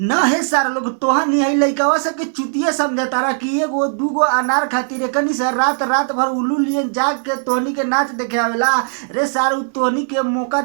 है सार लोग तोहनी है लइकवा से के चुतिया समझता रहा कि एगो दूगो अनार खातिर एकनी से रात रात भर उल्लू लिए जाग के तोहनी के नाच देखे आवेला रे सार उ तोहनी के मौका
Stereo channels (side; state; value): left; silent; digital silence